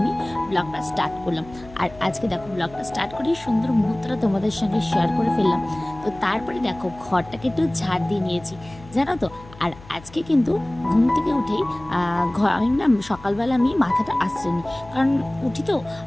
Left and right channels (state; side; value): noise; left; hum, 20 dB below the sound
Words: ব্লগটা স্টার্ট করলাম। আর আজকে দেখো ব্লগটা স্টার্ট করে সুন্দর মুহূর্তটা তোমাদের সঙ্গে শেয়ার করে ফেললাম। তো তারপরে দেখো ঘরটাকে একটু ঝাড় দিয়ে নিয়েছি, জানো তো। আর আজকে কিন্তু ঘুম থেকে উঠেই আমি না সকালবেলা আমি মাথাটা আঁচড়ে, কারণ উঠি তো